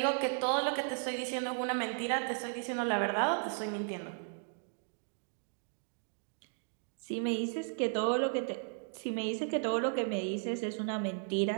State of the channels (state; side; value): silent; left; 54 dB below the other